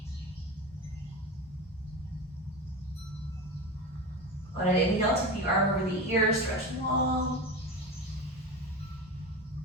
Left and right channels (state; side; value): normal; both; correlation 0.25